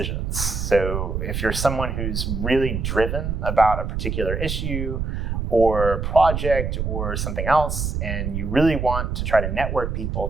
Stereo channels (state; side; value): noise; right; rumble, 2 dB below the sound